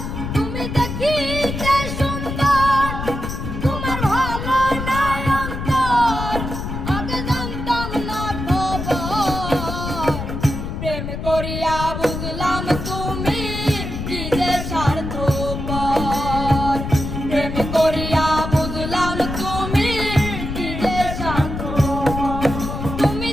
তুমি দেখিতে সুন্দর তোমার ভালো নয়ন তোর, আগে জানতাম না খবর। প্রেম করিয়া বুঝলাম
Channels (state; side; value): noise; left; rumble, 5 dB below the sound